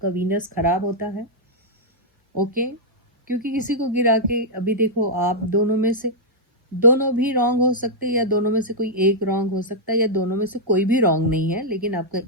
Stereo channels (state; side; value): normal; both; correlation -0.08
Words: वीनस खराब होता है, ओके, क्योंकि किसी को गिरा के, अभी देखो आप दोनों में से दोनों भी रॉन्ग हो सकते हैं, या दोनों में से कोई एक रॉन्ग हो सकता है, या दोनों में से कोई भी रॉन्ग नहीं है, लेकिन आपका